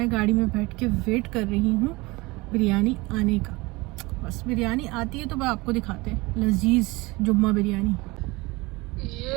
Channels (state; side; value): quieter; left; 23.1 dB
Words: गाड़ी में बैठ के वेट कर रही हूँ बिरयानी आने का। बस बिरयानी आती है तो मैं आपको दिखाते हैं लजीज जुम्मा बिरयानी।